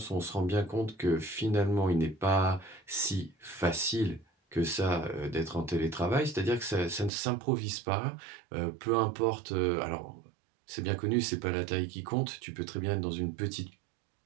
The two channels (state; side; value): drops out; left; at 7.1 s